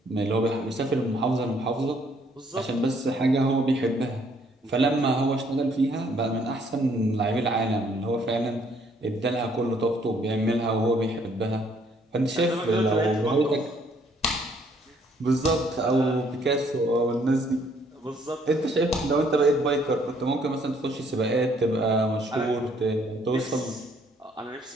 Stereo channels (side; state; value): both; normal; correlation 0.65